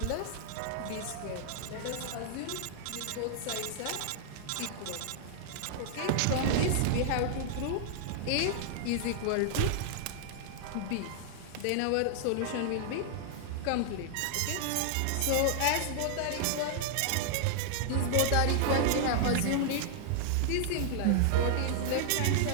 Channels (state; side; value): different; both; correlation -0.01